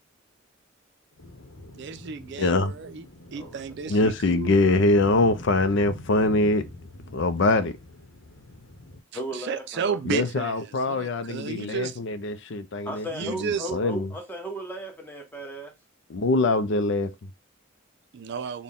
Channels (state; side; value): normal; both; correlation 0.13